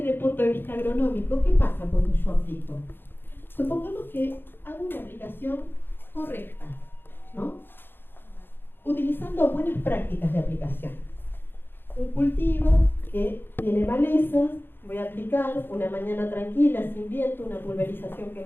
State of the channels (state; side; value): late; right; 0.10 ms